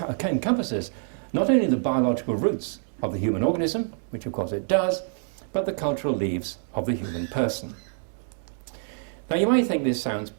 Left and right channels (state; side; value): silent; left; 56 dB below the other